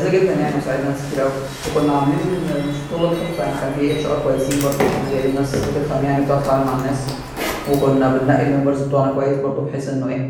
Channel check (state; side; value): identical; both; correlation 1.00